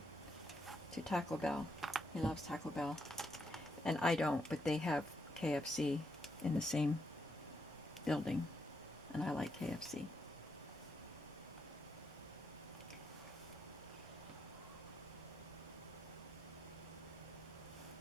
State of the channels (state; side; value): normal; both; correlation 0.79